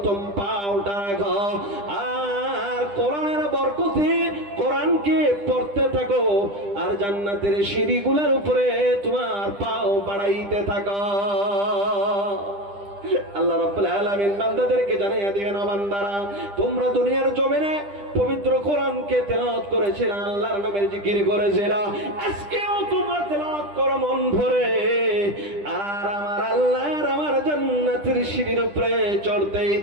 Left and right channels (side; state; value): left; late; 10 ms